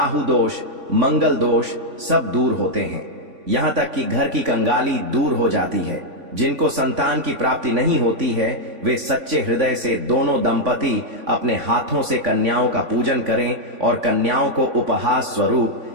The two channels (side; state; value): left; late; 3.5 ms